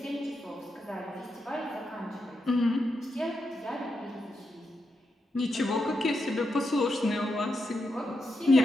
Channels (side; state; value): both; normal; correlation 0.85